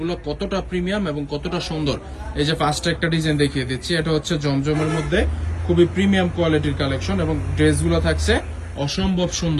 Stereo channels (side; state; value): both; identical; correlation 1.00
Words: কতটা প্রিমিয়াম এবং কতটা সুন্দর। এই যে ফার্স্টে একটা ডিজাইন দেখিয়ে দিচ্ছি, এটা হচ্ছে জমজমের মধ্যে খুবই প্রিমিয়াম কোয়ালিটির কালেকশন এবং ড্রেসগুলো থাকছে অসম্ভব